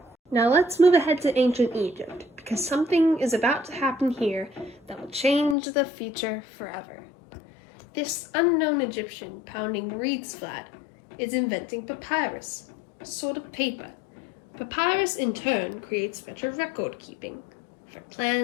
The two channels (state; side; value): drops out; right; at 5.6 s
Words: Now let's move ahead to ancient Egypt, because something is about to happen here that will change the future forever. This unknown Egyptian pounding reeds flat is inventing papyrus, a sort of paper. Papyrus in turn creates better record keeping for